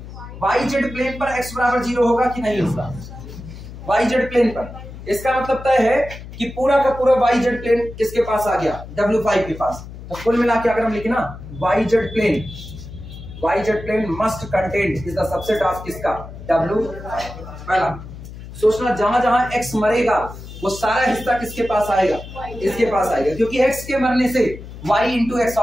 YZ प्लेन पर x बराबर 0 होगा कि नहीं होगा, YZ प्लेन पर। इसका मतलब तय है कि पूरा का पूरा YZ प्लेन किसके पास आ गया, W5 के पास। तो कुल मिला के अगर हम लिखे ना YZ plane must contain is the subset of किसका, W। पहला सोचना, जहां जहां x मरेगा वो सारा हिस्सा किसके पास आएगा, इसके पास आएगा, क्योंकि x के मरने से y इंटू एक्स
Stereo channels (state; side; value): noise; left; hum, 13 dB below the sound